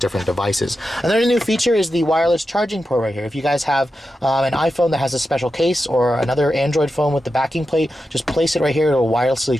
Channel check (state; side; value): normal; both; correlation 0.90